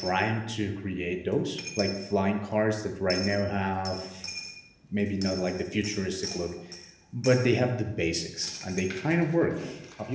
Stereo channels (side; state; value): both; identical; correlation 1.00